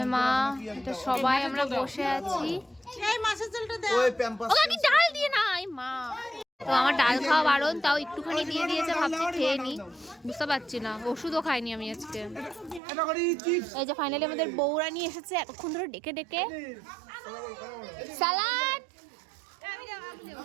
মা, এটা সবাই আমরা বসে আছি। ওকে কি ডাল দিয়ে নাই মা? তো আমার ডাল খাওয়া বারণ, তাও একটুখানি দিয়ে দিয়েছে, ভাবছি খেয়ে নি, বুঝতে পারছি না। ওষুধও খাইনি আমি আজকে। এই যে ফাইনালি আমাদের বউরা নিয়ে এসেছে এতক্ষণ ধরে ডেকে ডেকে সালাদ।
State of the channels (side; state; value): left; drops out; at 12.8 s